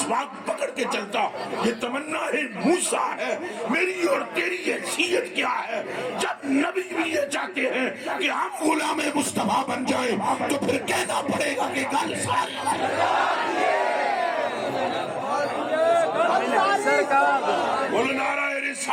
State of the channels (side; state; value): both; identical; correlation 1.00